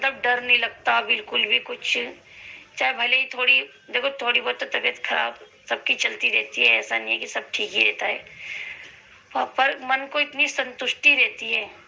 डर नहीं लगता बिल्कुल भी कुछ। चाहे भले ही थोड़ी बहुत तो तबीयत खराब सबकी चलती रहती है, ऐसा नहीं है कि सब ठीक ही रहता है। पर मन को इतनी संतुष्टि रहती है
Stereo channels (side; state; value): both; identical; correlation 1.00